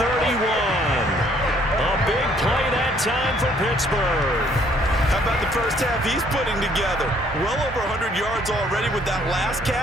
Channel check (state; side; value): normal; both; correlation 0.63